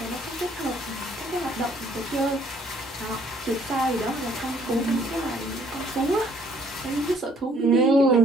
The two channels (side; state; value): both; normal; correlation 0.62